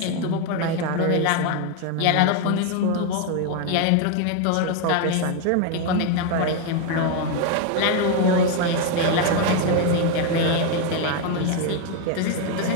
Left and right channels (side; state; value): both; different; correlation 0.01